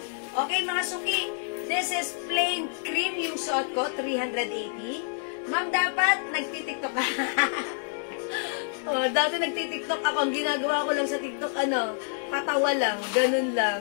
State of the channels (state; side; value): silent; right; 60 dB below the other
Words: Okay, mga suki, this is plain cream yung suot ko, 380. Ma'am, dapat nagtitiktok ka. Dati nagtitiktok ako. Ang ginagawa ko lang sa TikTok, patawa lang, ganun